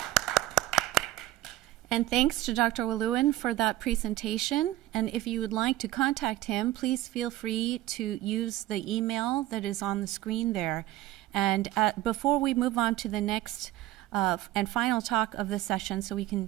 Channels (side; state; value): left; quieter; 15.3 dB